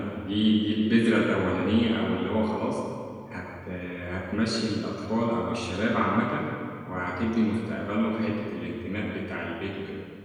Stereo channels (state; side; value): identical; both; correlation 1.00